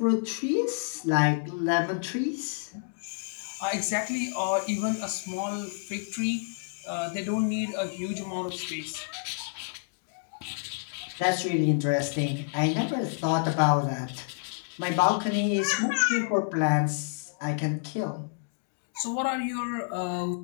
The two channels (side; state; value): right; silent; digital silence